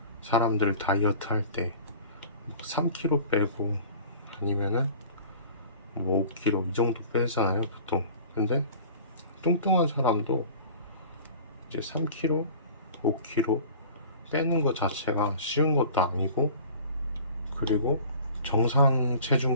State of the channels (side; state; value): both; inverted; correlation -0.43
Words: 사람들 다이어트 할 때 3kg 빼고 아니면은 뭐 5kg 이 정도 빼잖아요, 보통. 근데 뚱뚱한 사람도 이제 3kg, 5kg 빼는 것 자체가 쉬운 것도 아니고, 그리고 정상